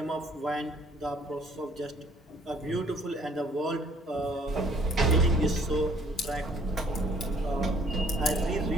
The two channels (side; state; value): both; normal; correlation 0.60